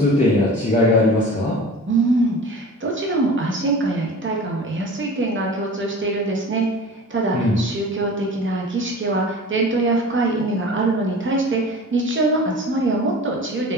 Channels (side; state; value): both; normal; correlation 0.38